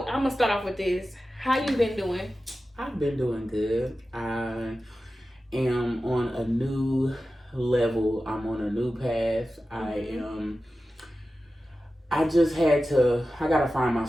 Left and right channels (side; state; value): both; normal; correlation 0.94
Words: I'm gonna start off with this. How you been doing? I've been doing good. I am on a new level. I'm on a new path. I just I gotta find